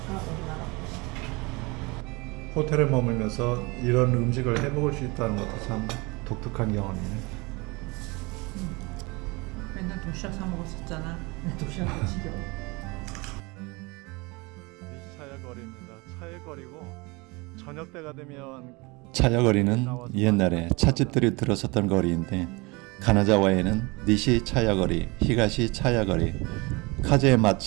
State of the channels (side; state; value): left; quieter; 26.0 dB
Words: 우리나라 호텔에 머물면서 이런 음식을 해먹을 수 있다는 것도 참 독특한 경험이네. 맨날 도시락 사 먹었었잖아. 도시락도 지겨워. 니시차야 거리입니다. 차의 거리고 저녁 때가 되면 차야거리는 옛날에 찻집들이 들어섰던 거리인데 가나자와에는 니시 차야거리, 히가시 차야거리, 카제